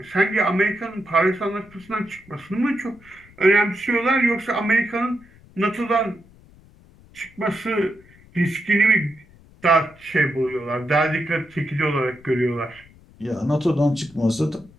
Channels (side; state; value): left; noise; rumble, 26 dB below the sound